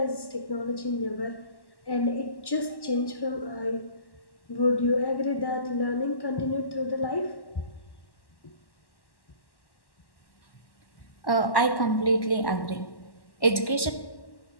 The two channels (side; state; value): right; late; 1.1 ms